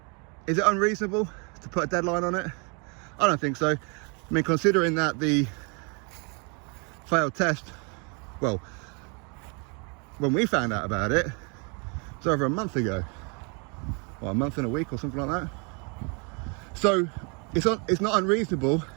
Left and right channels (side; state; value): left; quieter; 34.4 dB